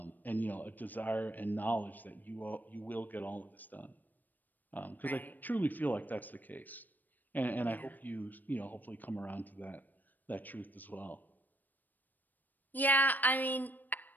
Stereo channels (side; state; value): right; late; 0.087 ms